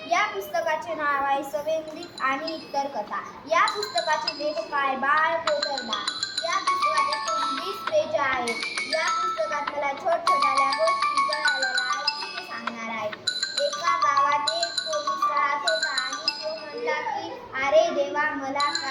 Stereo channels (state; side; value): identical; both; correlation 1.00